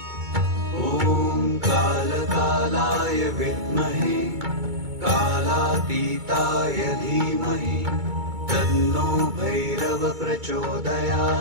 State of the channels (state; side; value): late; left; 2.2 ms